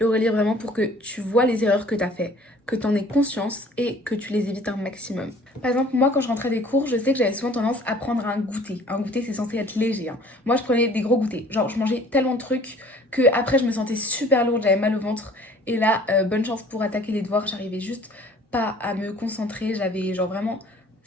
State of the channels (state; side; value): normal; both; correlation 0.52